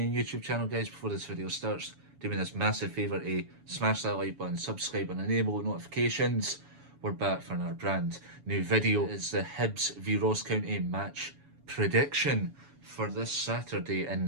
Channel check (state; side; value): late; left; 7.1 ms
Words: YouTube channel. Guys, before this video starts, do me this massive favour to smash that like button, subscribe and enable notifications. We're back for another brand new video. It's the Hibs v Ross County match prediction for this Saturday,